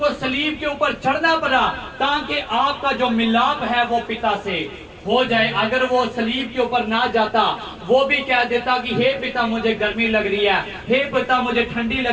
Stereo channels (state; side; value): identical; both; correlation 1.00